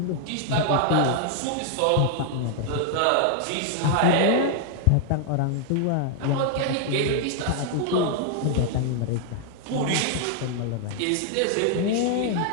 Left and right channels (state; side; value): different; both; correlation 0.00